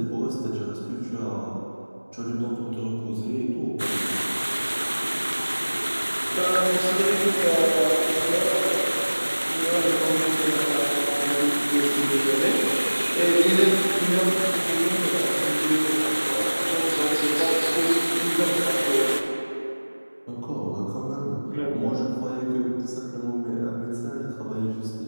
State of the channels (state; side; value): inverted; both; correlation -1.00